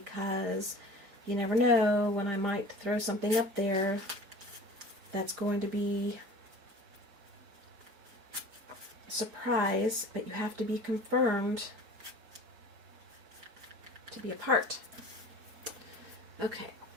you never know when I might throw something up there that's going to be a surprise, but you have to be confirmed to be a part. Okay.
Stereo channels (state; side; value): late; left; 5.0 ms